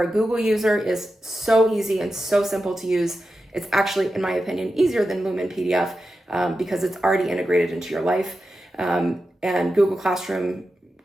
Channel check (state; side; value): normal; both; correlation 0.91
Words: a Google user, is so easy and so simple to use. It's actually, in my opinion, easier than Lumen PDF because it's already integrated into your life. And Google Classroom